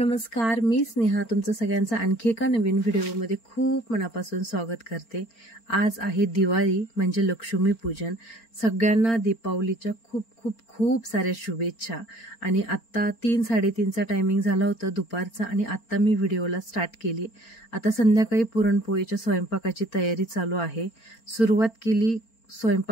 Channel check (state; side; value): late; right; 4.4 ms